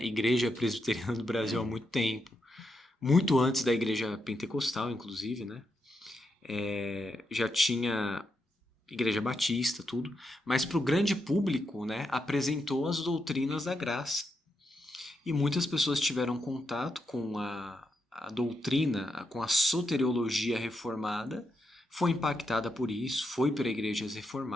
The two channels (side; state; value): both; normal; correlation 0.84